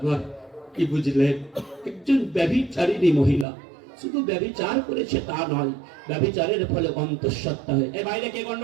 কি বুঝলেন? একজন ব্যভিচারিণী মহিলা শুধু ব্যভিচার করেছে তা নয়, ব্যভিচারের ফলে অন্তঃসত্ত্বা হয়ে, এই বাইরে কে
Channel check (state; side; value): drops out; left; at 3.5 s